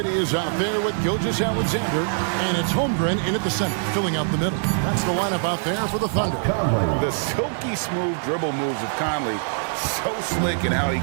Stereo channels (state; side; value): silent; left; digital silence